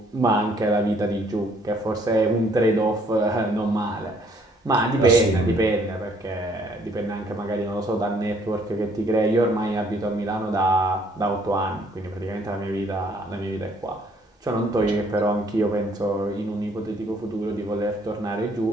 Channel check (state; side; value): normal; both; correlation 0.63